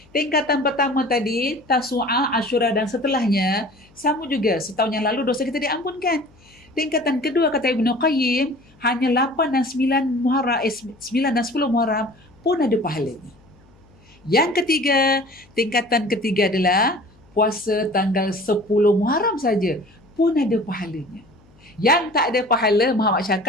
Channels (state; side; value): noise; left; hum, 29 dB below the sound